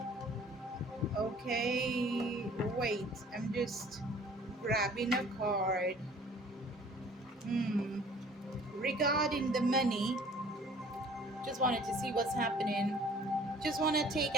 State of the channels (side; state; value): both; normal; correlation 0.52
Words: Okay, wait. I'm just grabbing a card. Hmm. Regarding the money, just wanted to see what's happening. Just want to